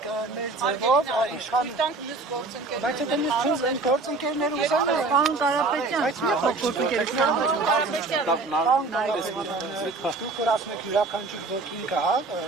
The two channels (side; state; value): left; quieter; 3.5 dB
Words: մեր ձևով իշխան Բայց եթե մյուս են գործընկերներ ուզեն Պարոն Կարապետյան, բայց մի փոքր դուք որ ասում եք յուրաքանչյուր ոքին կա,